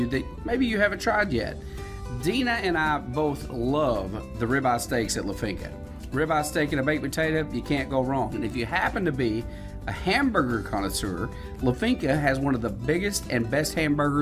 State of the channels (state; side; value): identical; both; correlation 1.00